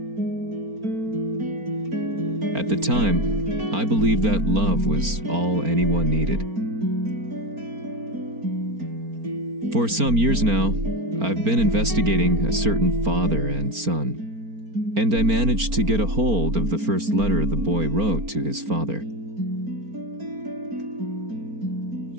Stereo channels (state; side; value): late; left; 4.4 ms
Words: At the time, I believed that love was all anyone needed. For some years now, I've been investigating a certain father and son, and I managed to get a hold of the first letter the boy wrote to his father.